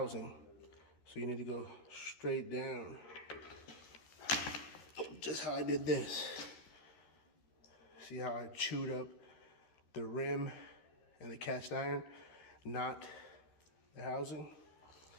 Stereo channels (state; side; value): late; right; 13 ms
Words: so you need to go straight down. Just how I did this. See how I chewed up the rim and the cast iron, not the housing?